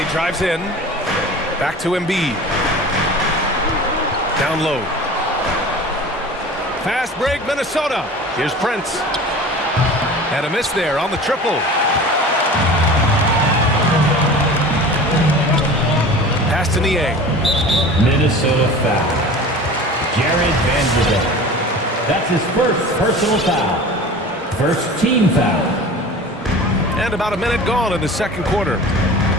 drives in. Back to Embiid. Down low. Fast break, Minnesota. Here's Prince. And a miss there on the triple. Pass to Niang. Minnesota foul. Jared Vanderbilt. That's his first personal foul. First team foul. And about a minute gone in the second quarter.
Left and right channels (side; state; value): both; normal; correlation 0.38